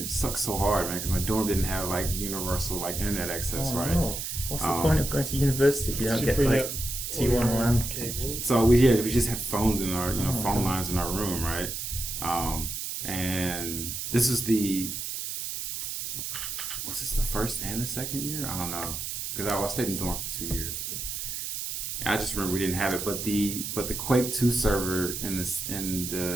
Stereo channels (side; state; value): right; noise; hiss, 5 dB below the sound